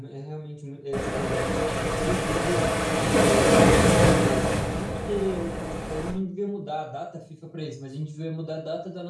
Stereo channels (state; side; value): identical; both; correlation 1.00